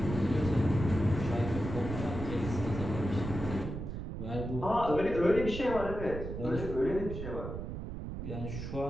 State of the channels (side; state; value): right; noise; rumble, 6 dB below the sound